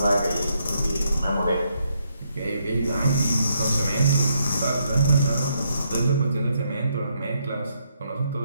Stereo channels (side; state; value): both; inverted; correlation -0.76